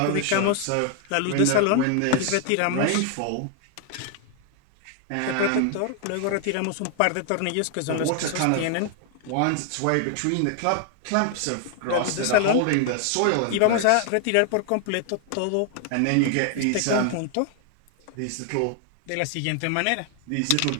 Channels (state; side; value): different; both; correlation 0.00